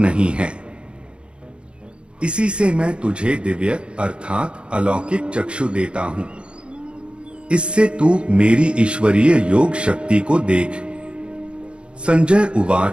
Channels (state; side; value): late; left; 0.056 ms